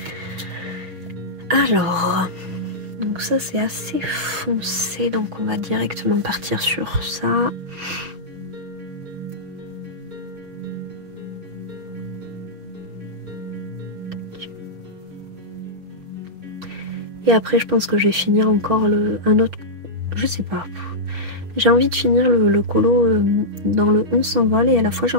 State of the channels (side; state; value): left; late; 6.2 ms